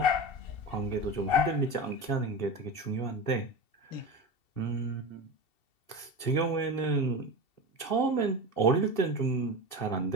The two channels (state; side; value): late; right; 2.7 ms